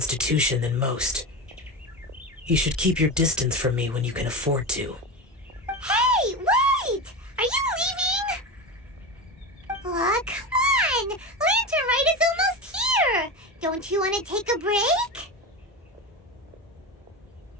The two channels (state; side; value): normal; both; correlation 0.22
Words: than most. You should keep your distance from me when you can afford to. Hey, wait! Are you leaving? Aw, come on! Lantern Rite is almost here! Don't you want to take a break?